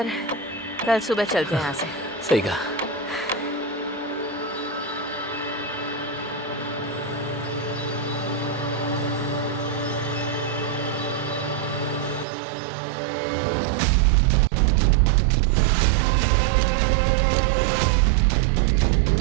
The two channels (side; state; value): left; drops out; at 12.2 s